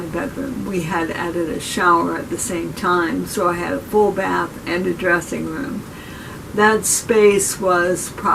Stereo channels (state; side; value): identical; both; correlation 1.00